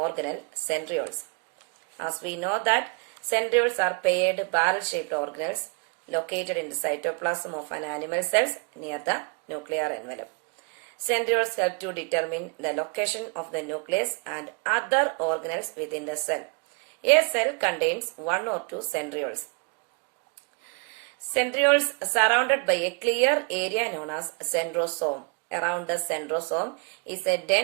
centrioles. As we know that centrioles are paired barrel-shaped organelles located in the cytoplasm of an animal cells near the nuclear envelope. Centrioles help to determine the location of the nucleus and other organelles within the cell. A cell contains one or two centrioles. Centrioles surrounded by a clear area known as centrosome. Around the centrosome is a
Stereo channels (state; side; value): quieter; left; 36.2 dB